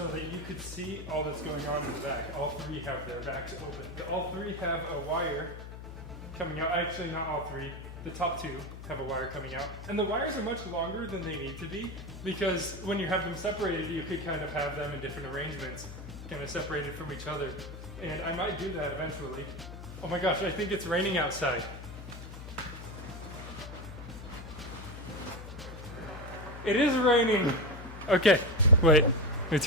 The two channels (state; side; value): noise; left; hum, 11 dB below the sound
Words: that you could see all that's going on in the back. All three have their backs open. All three have a wire coming out. Actually, not all three. The top two have a wire coming out. And the wires are much longer than they need to be because when you have them separated, you could kind of have them in different arrangements, kind of separated from each other. And I might do that eventually. Oh my gosh, I think it's raining outside. It is raining. Okay, wait, let me